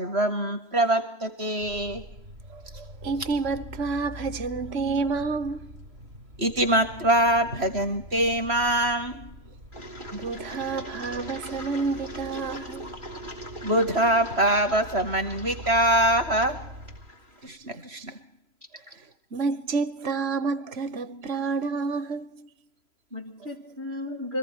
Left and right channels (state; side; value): late; left; 3.0 ms